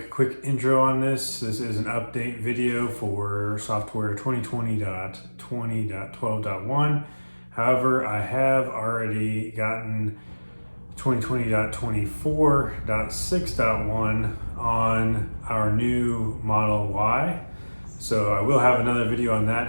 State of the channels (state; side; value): inverted; both; correlation -1.00